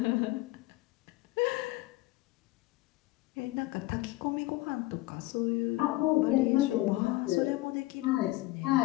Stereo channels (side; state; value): right; quieter; 18.8 dB